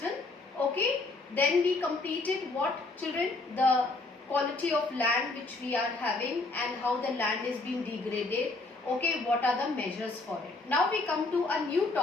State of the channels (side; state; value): right; quieter; 3.4 dB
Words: Okay, then we completed what, children? The quality of land which we are having and how the land is being degraded. Okay, what are the measures for it? Now we come to a new